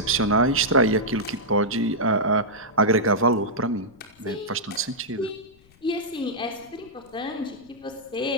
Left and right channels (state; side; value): noise; left; rumble, 29 dB below the sound